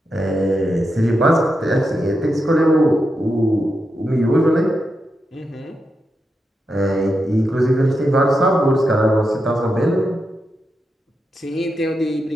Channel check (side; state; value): both; normal; correlation 0.86